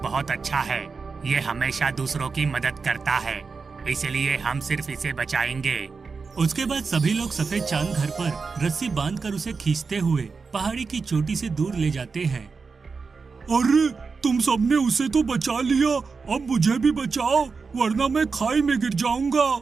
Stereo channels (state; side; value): quieter; left; 4.8 dB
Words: अच्छा है। ये हमेशा दूसरों की मदद करता है, इसलिए हम सिर्फ इसे बचाएंगे। उसके बाद सभी लोग सफेद चांद घर पर रस्सी बांधकर उसे खींचते हुए पहाड़ी की चोटी से दूर ले जाते हैं। अरे तुम सबने उसे तो बचा लिया, अब मुझे भी बचाओ, वरना मैं खाई में गिर जाऊंगा।